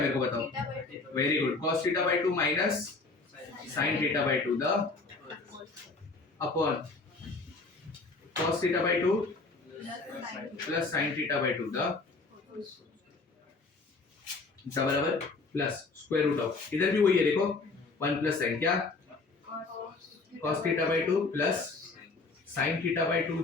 को बताओ? Very good. cos theta by 2 minus sin theta bye 2 the upon cos theta by 2 plus sin theta bye 2 the बराबर प्लस स्क्वायर रूट ऑफ, इधर भी वही है देखो, 1 प्लस sin क्या? cos theta by 2 plus sin theta bye 2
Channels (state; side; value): quieter; right; 3.8 dB